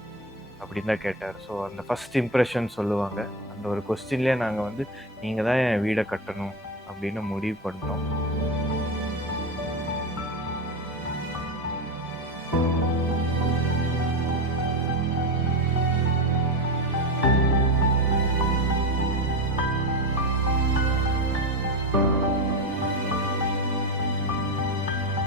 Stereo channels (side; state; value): both; normal; correlation 0.18